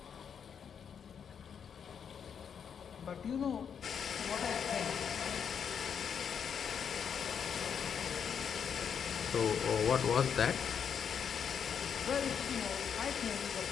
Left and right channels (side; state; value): right; quieter; 7.4 dB